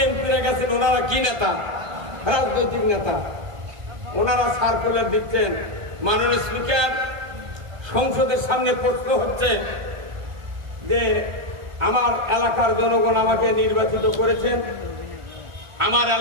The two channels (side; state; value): left; late; 1.5 ms